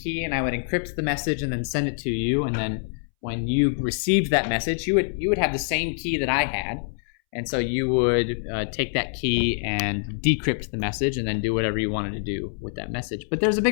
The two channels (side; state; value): right; silent; 62 dB below the other